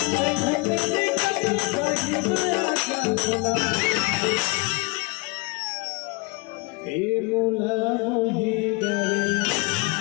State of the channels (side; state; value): right; quieter; 28.4 dB